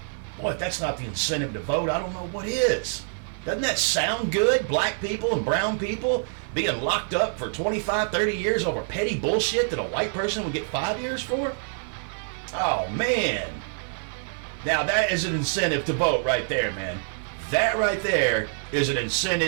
Boy, if that's not the incentive to vote, I don't know what is. Doesn't that sound good? Black people and brown people being locked up for 25, 30 years over petty bullshit that a white person would get 5 years for? Oh, man. Now, that is an incentive to vote right there, man. That right there is an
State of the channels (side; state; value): left; silent; digital silence